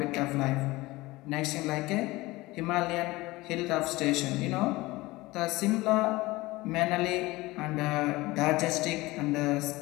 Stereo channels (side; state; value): right; quieter; 20.4 dB